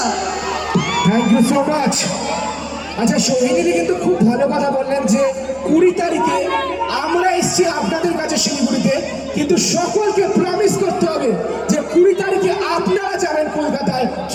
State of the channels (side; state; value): both; identical; correlation 1.00